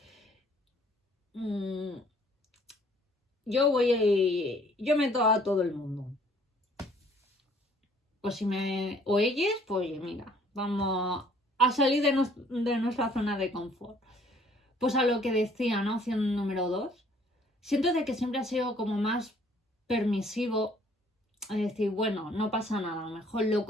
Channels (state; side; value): normal; both; correlation 0.59